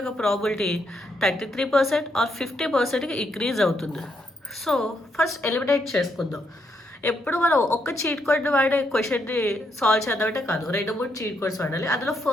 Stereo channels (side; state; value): both; normal; correlation 0.77